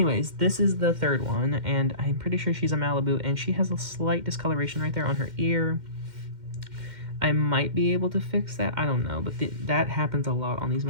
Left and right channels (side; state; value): left; late; 2.1 ms